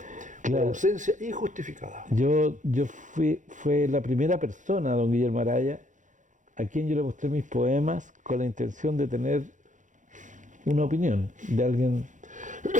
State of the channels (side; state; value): left; late; 0.36 ms